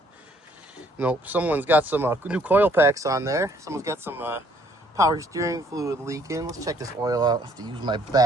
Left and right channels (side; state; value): both; normal; correlation 0.64